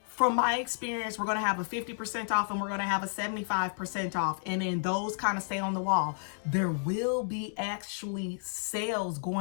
From my experience, we're going to have a 50% off and we're going to have a 75% off. And then those kind of stay on the wall. There will be actually sales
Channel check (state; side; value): silent; right; digital silence